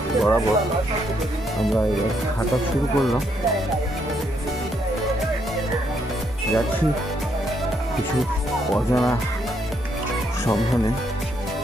বরাবর আমরা এবার হাঁটা শুরু করলাম। যাচ্ছি কিছু অজানা সন্ধানে,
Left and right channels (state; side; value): normal; both; correlation 0.74